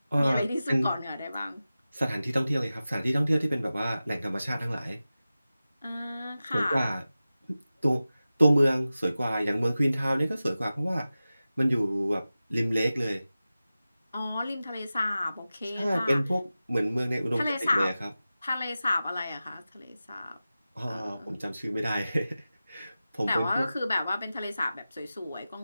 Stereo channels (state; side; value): inverted; both; correlation -0.95